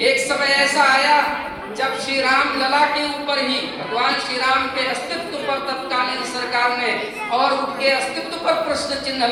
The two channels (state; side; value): identical; both; correlation 1.00